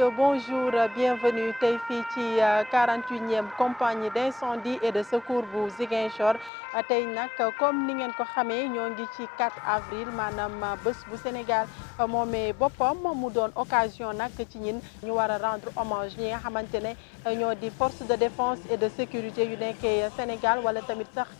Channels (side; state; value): right; drops out; at 6.5 s